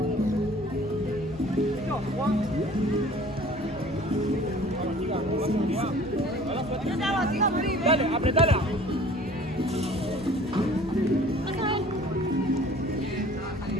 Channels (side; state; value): both; normal; correlation 0.49